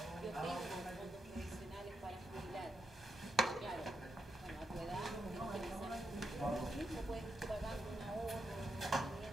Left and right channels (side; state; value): both; normal; correlation 0.83